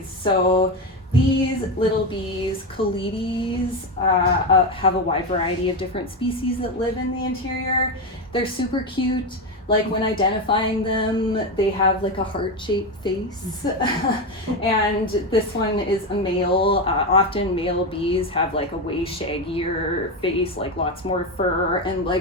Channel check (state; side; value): normal; both; correlation 0.14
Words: So these little bees, Calides, have a wide variety of different species that live in the interior. They're super cute. Like when identifying them, they have like a heart-shaped face. And this one is a male. Often male bees have like a way shaggier face, like lots more fur and